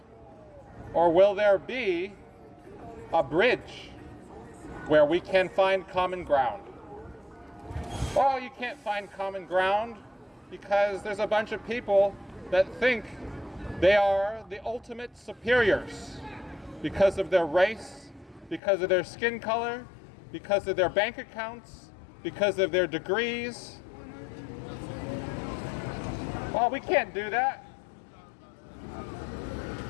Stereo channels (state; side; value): drops out; right; at 18.6 s